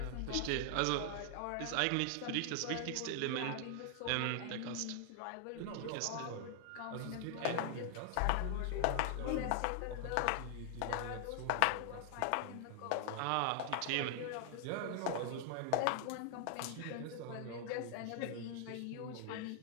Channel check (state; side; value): different; both; correlation 0.00